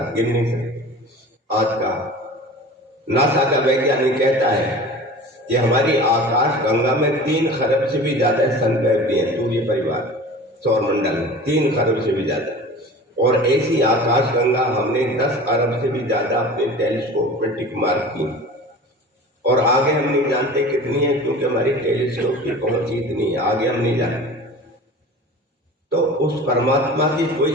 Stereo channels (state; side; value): normal; both; correlation 0.38